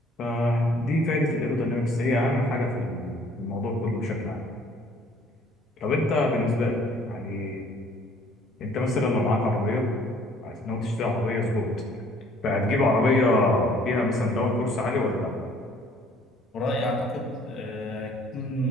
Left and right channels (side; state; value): both; normal; correlation 0.58